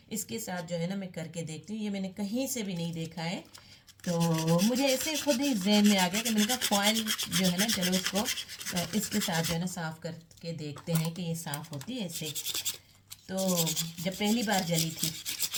इसके साथ जो है ना मैं करके देखती हूँ। ये मैंने कहीं से भी नहीं देखा है, तो मुझे ऐसे खुद ही जहन में आ गया कि मैंने कहा फॉइल जो है ना, चलो इसको इसके साथ जो है ना साफ़ करके देखते हैं कि ये साफ़ होती है इससे। तो जब पहली बार जली थी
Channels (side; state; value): both; identical; correlation 1.00